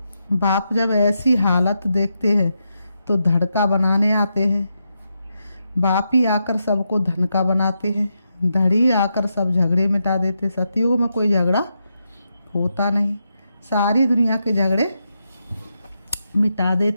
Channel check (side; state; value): both; inverted; correlation -0.84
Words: बाप जब ऐसी हालत देखते हैं तो धड़का बनाने आते हैं। बाप ही आकर सबको धनका बनाते हैं, धड़ी आकर सब झगड़े मिटा देते। सतयुग में कोई झगड़ा होता नहीं, सारी दुनिया के झगड़े मिटा